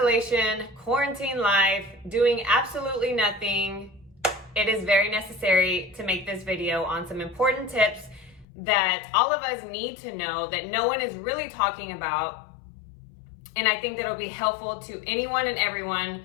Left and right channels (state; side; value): drops out; right; at 8.5 s